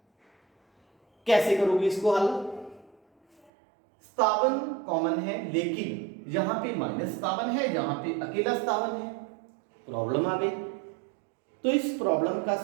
कैसे करोगे इसको हल, 57 कॉमन है, लेकिन यहां पे -57 है, यहां पे अकेला 57 है, प्रॉब्लम आ गई। तो इस प्रॉब्लम का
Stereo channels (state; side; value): drops out; left; at 3.5 s